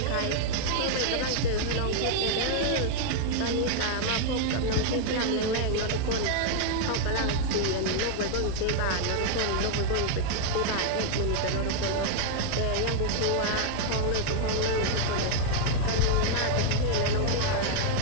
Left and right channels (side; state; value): both; different; correlation 0.00